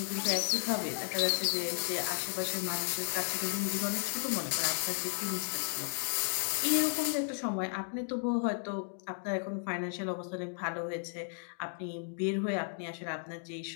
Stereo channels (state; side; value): silent; right; 55 dB below the other